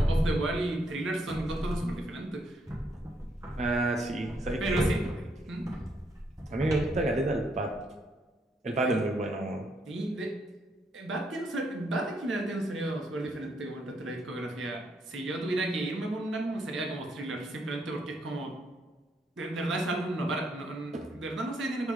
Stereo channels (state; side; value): normal; both; correlation 0.74